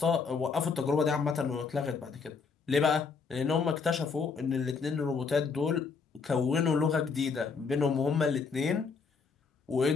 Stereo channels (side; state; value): right; quieter; 5.2 dB